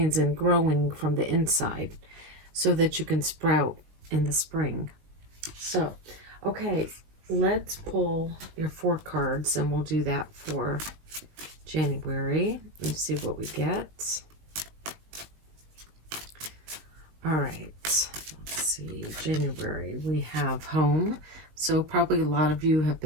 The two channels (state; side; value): late; left; 19 ms